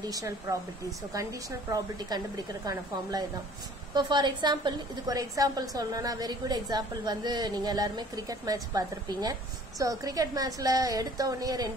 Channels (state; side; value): normal; both; correlation 0.51